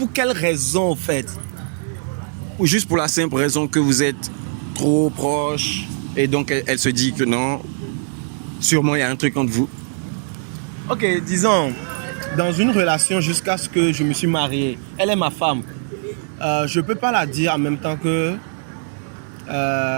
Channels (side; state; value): left; silent; digital silence